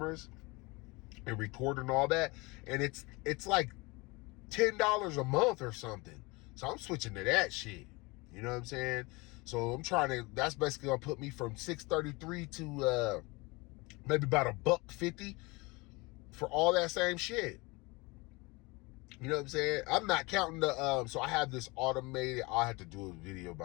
and record and all that. And it's like $10 a month or something. So I'm switching to that shit. You know what I'm saying? So that's basically gonna put me from $633 to maybe about $150 for all that same shit. You know what I'm saying? I'm not counting the so I have this automated, I'll have to do a video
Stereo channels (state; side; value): quieter; right; 25.1 dB